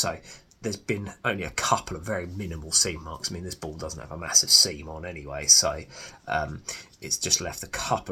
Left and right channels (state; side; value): identical; both; correlation 1.00